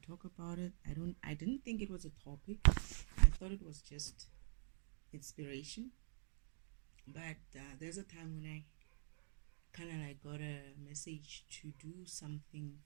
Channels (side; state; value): left; silent; digital silence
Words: about it. I didn't think it was a topic. I thought it was just inspiration. But there's a time when I kind of like got a message to do something